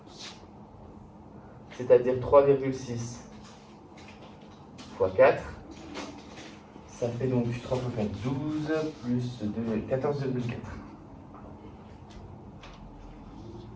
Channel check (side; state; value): both; identical; correlation 1.00